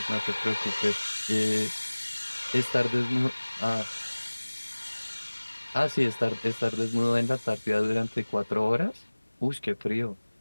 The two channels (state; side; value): inverted; both; correlation -1.00